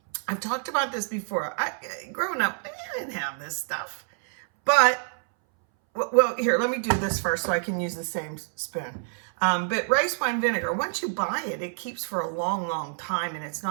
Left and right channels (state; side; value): silent; left; 60 dB below the other